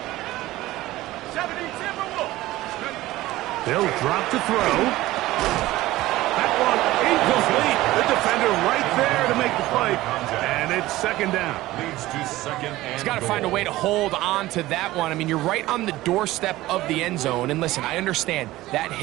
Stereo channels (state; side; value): quieter; left; 17.1 dB